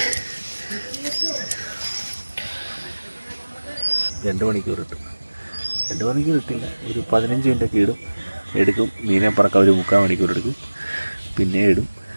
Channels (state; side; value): inverted; both; correlation -1.00